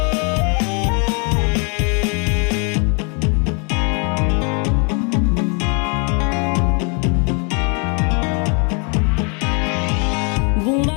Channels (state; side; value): quieter; right; 35.8 dB